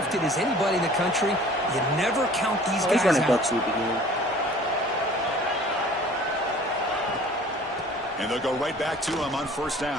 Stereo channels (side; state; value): both; normal; correlation 0.48